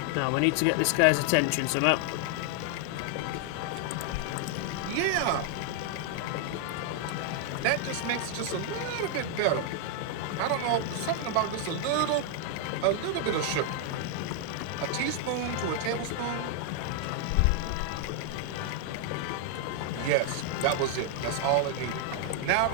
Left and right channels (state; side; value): different; both; correlation 0.00